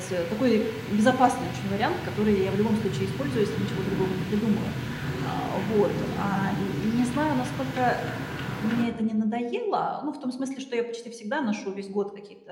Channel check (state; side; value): identical; both; correlation 1.00